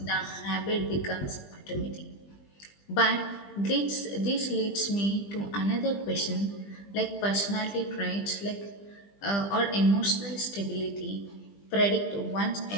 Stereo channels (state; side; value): late; right; 20 ms